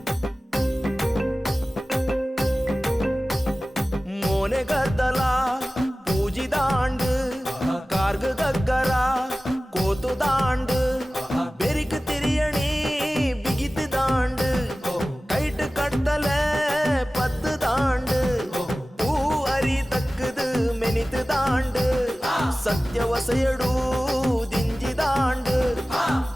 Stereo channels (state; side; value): normal; both; correlation 0.97